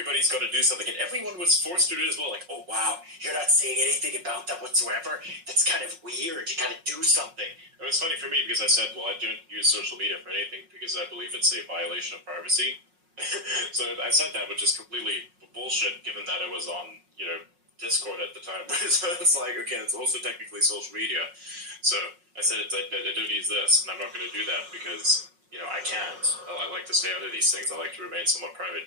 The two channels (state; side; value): late; left; 5.5 ms